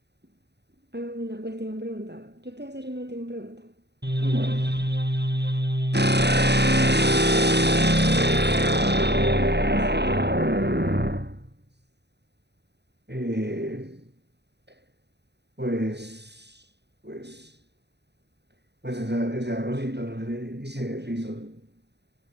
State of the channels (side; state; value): left; late; 0.49 ms